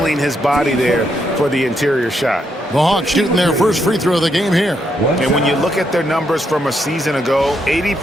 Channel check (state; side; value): normal; both; correlation 0.78